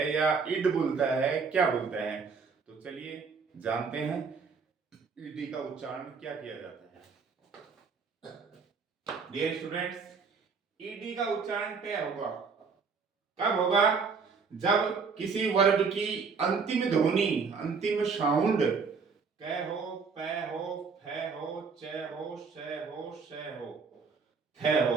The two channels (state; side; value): quieter; left; 5.2 dB